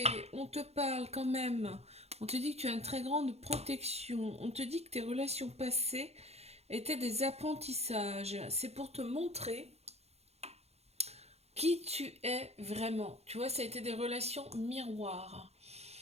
on te parle quand même. On te dit que tu as une très grande protection. On te dit que tes relations passées étaient des apprentissages. C'est pour te montrer qui tu es vraiment. Tu vois, ça a été des relations miroirs.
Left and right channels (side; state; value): left; late; 0.31 ms